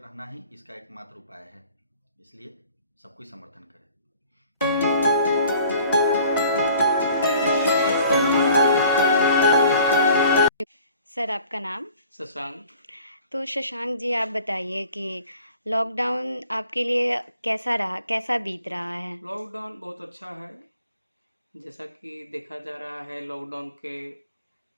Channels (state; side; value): inverted; both; correlation -0.52